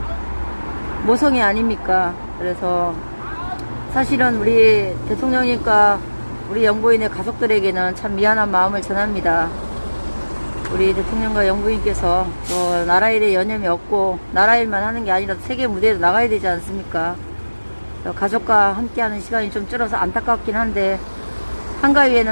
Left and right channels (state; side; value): inverted; both; correlation -1.00